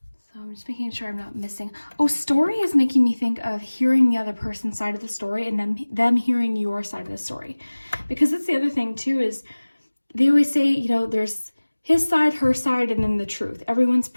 So I'm just making sure I'm not missing. Oh, story is making me think of hearing the other person's side of the story and then them hearing your side of the story. Because that's the other thing too, is they always say, you know, there's his side, her side, and then the truth. Everyone's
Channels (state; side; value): inverted; both; correlation -1.00